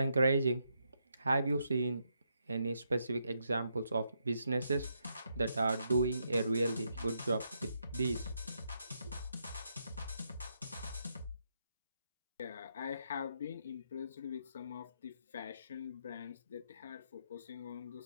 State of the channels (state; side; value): inverted; both; correlation -0.79